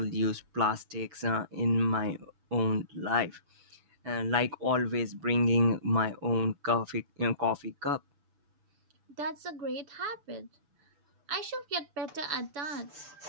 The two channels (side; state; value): left; late; 6.9 ms